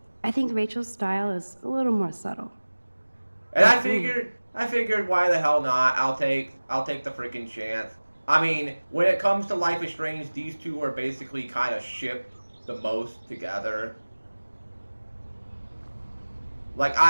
I think Rachel's style is a little more subtle. And I figured why the hell not? I'll take the freaking chance. I mean, when it comes to Life is Strange, these two are basically kind of shipped the most together. Like,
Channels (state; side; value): inverted; both; correlation -1.00